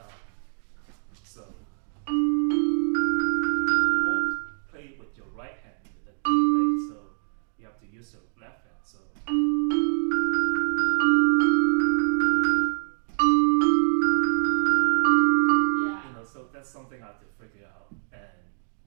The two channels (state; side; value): silent; left; digital silence